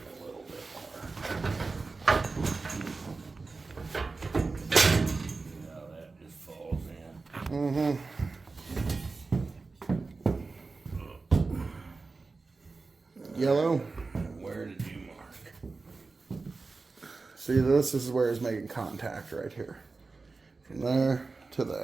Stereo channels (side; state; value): left; quieter; 3.9 dB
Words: a little bit more. Now that just falls in. Mm-hmm. Yellow. Where did you mark? See, this is where it's making contact right here. From there to